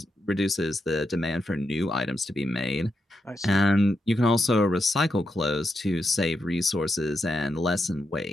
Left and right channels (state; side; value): normal; both; correlation 0.84